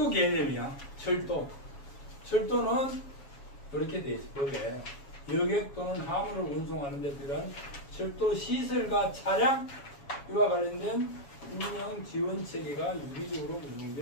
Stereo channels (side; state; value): right; late; 7.2 ms